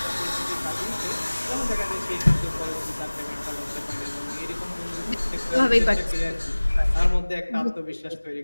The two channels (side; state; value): both; inverted; correlation -1.00